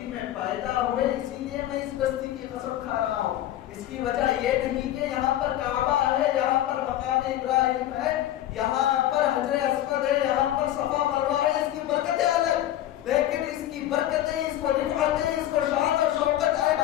میں پیدا ہوئے، اسی لیے میں اس بستی کی قسم کھا رہا ہوں۔ اس کی وجہ یہ نہیں کہ یہاں پر کعبہ ہے، یہاں پر مقام ابراہیم ہے، یہاں پر حجر اسود ہے، یہاں پر صفا مروہ ہے، اس کی برکتیں الگ، لیکن اس کی برکتیں، اس کو رفعتیں، اس کو شان اور شوکت اے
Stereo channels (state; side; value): quieter; right; 13.0 dB